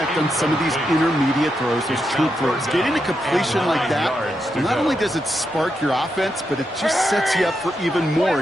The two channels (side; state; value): both; normal; correlation 0.84